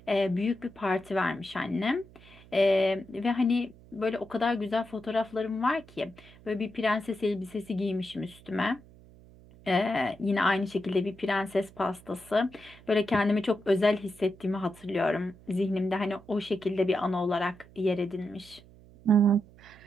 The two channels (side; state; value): right; noise; hum, 23 dB below the sound